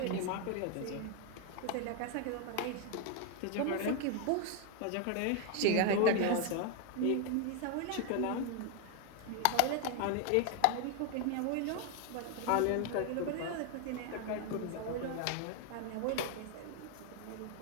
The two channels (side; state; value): both; different; correlation 0.01